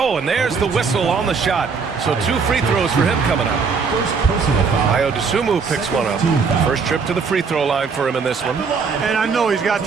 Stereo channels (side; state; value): left; quieter; 5.3 dB